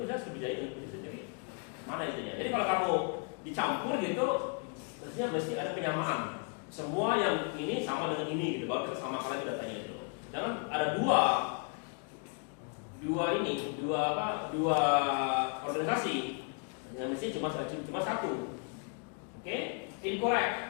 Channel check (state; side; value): quieter; right; 39.6 dB